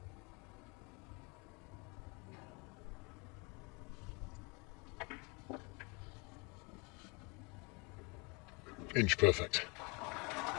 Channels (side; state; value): right; quieter; 29.9 dB